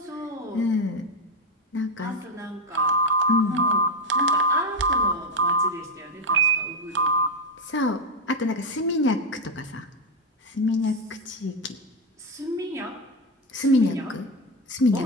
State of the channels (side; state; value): both; normal; correlation 0.06